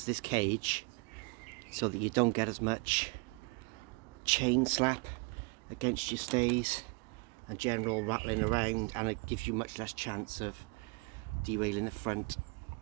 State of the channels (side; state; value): left; quieter; 32.3 dB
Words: this cage so that you don't get as much chain slap against your stays and general rattling around, and it gives you much less chance of derailing the front